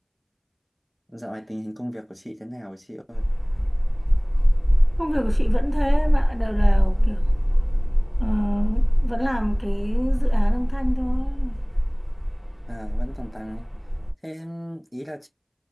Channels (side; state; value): both; identical; correlation 1.00